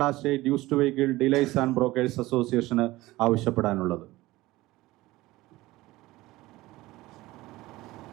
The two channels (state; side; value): quieter; left; 18.5 dB